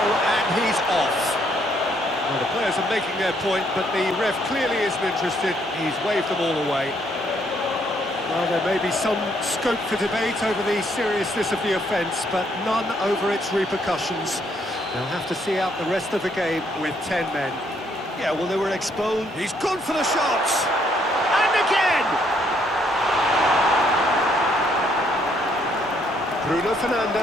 and he's off. Well, the players are making their point, but the ref clearly isn't interested. He's waved them all away. Well, there may be some scope for debate over the seriousness of the offence, but none over its repercussions. They'll have to see out the rest of the game with 10 men. Yeah, well, they were exposed. He's gone for the shots! And again! Bruno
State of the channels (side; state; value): both; normal; correlation 0.70